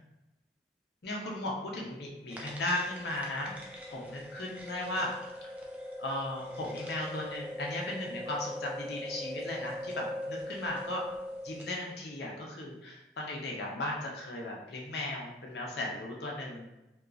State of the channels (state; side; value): normal; both; correlation 0.36